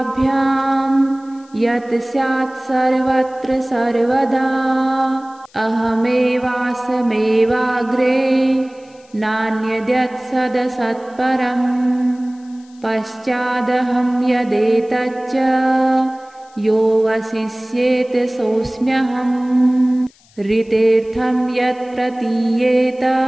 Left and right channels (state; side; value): noise; left; hiss, 30 dB below the sound